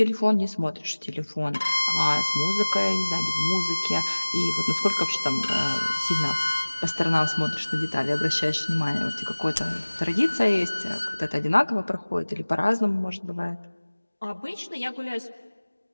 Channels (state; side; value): inverted; both; correlation -1.00